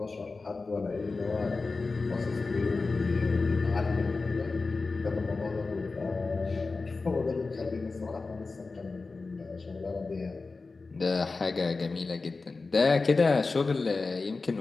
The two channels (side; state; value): right; quieter; 3.9 dB